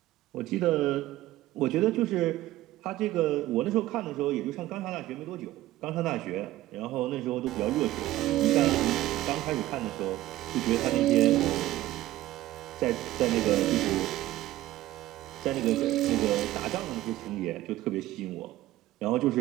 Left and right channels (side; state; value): left; quieter; 15.7 dB